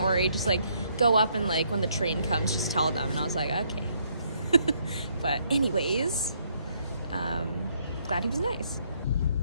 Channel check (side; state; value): both; inverted; correlation -0.70